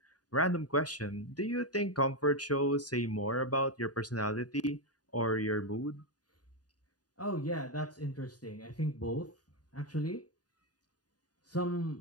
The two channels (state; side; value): late; right; 0.68 ms